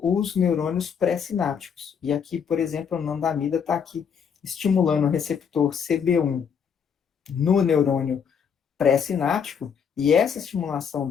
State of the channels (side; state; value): right; quieter; 7.1 dB